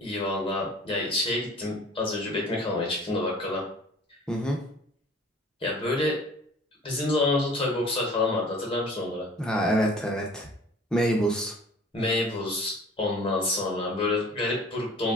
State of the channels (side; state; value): both; normal; correlation 0.47